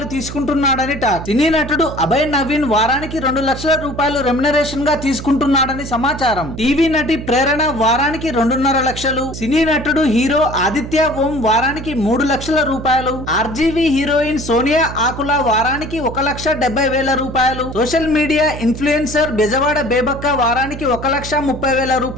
తీసుకుంటున్నాడని టాక్. సినీ నటుడు అభయ్ నవీన్ వారానికి 2 లక్షల రూపాయలు రెమ్యునరేషన్ గా తీసుకుంటున్నాడని సమాచారం. టీవీ నటి ప్రేరణ వారానికి 2.5 లక్షలు. సినీ నటుడు హీరో ఆదిత్య ఓం వారానికి 3 లక్షల రూపాయలు. హీరోయిన్ సోనియా ఆకుల వారానికి 1,70,000 రూపాయలు. సోషల్ మీడియా ఇన్ఫ్లుయెన్సర్ బెజవాడ బేబక్క వారానికి 1,30,000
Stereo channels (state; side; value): noise; right; hum, 9 dB below the sound